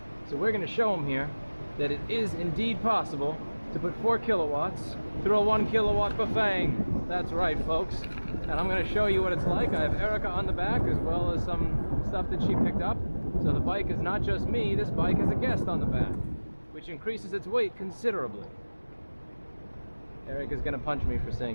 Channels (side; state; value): both; inverted; correlation -1.00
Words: So we're going to show him here that it is indeed possible to put 4 kilowatts through a 1 kilowatt bafang. That's right, folks. And I'm going to show you what it's like. I have Erica on the back as well as some stuff that she picked up. So the bike is not just me, this bike has a guest on the back, which increases its weight considerably. Erica's going to punch me for